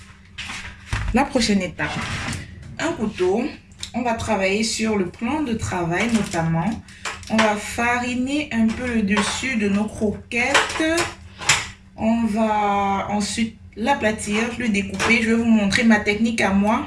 La prochaine étape, un couteau. On va travailler sur le plan de travail notamment. On va fariner un peu le dessus de nos croquettes. On va ensuite l'aplatir, le découper. Je vais vous montrer ma technique à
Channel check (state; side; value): identical; both; correlation 1.00